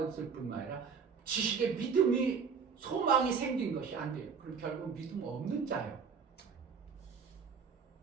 뿐만 아니라 지식의 믿음이 소망이 생긴 것이 안 돼요. 그럼 결국 믿음 없는 자예요.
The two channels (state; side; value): quieter; left; 6.0 dB